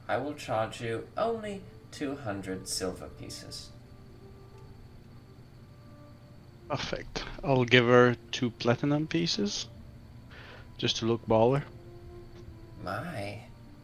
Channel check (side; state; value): both; identical; correlation 1.00